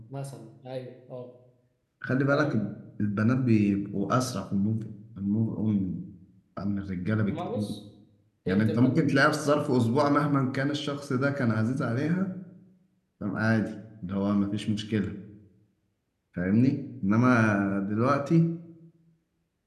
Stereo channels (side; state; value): both; identical; correlation 1.00